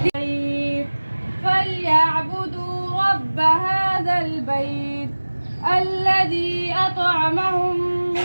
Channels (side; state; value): both; inverted; correlation -1.00